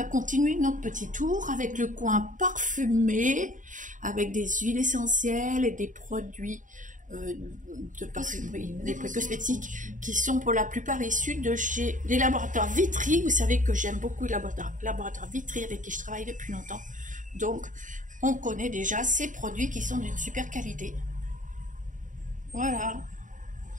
continuer notre petit tour avec le coin parfumé, avec des huiles essentielles et des produits de parfumerie, des produits cosmétiques qui sont pour la plupart issus de chez les laboratoires Vitry. Vous savez que j'aime beaucoup les laboratoires Vitry avec qui je travaille depuis longtemps. Donc, on connaît déjà ces produits qui sont d'une super qualité. Voilà.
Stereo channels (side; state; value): left; late; 0.37 ms